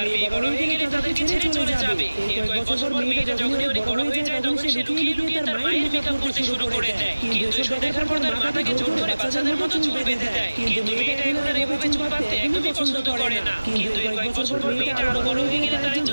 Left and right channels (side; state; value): both; inverted; correlation -1.00